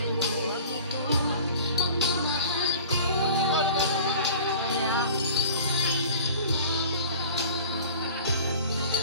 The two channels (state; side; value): inverted; both; correlation -0.42